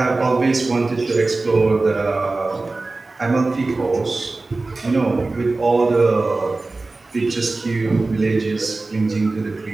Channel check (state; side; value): quieter; left; 3.4 dB